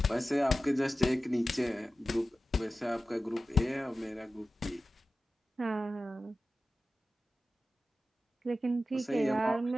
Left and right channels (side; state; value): both; normal; correlation 0.94